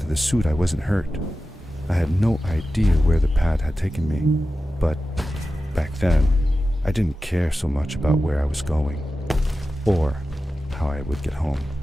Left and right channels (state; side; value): normal; both; correlation 0.93